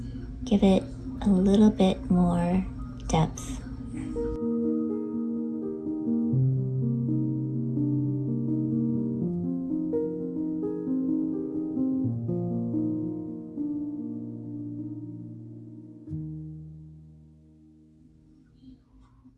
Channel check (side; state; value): both; identical; correlation 1.00